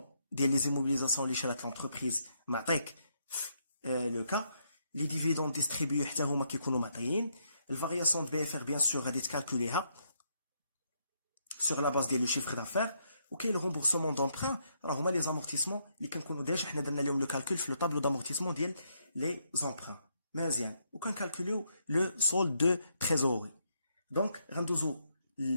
ديال لي زيموبيليزاسيون اللي شرات لونتربريز معطيك لو كا لي ديفيدوند ديستريبيو حتى هما كيكونوا معطيين. الفارياسيون دو بي اف ار بيان سور غادي تكالكوليها sur la base ديال لو شيفر دافير. وكاين لو رومبورسمون دونبران راه هما لي زامورتيسمون اللي كنكونوا ديجا حنا درنا لهم لو كالكول في لو طابلو دامورتيسمون ديال لي زامبران مزيان وكنكالكوليو لو سولد دو تريزوري. دونك غندوزو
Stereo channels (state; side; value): inverted; both; correlation -0.75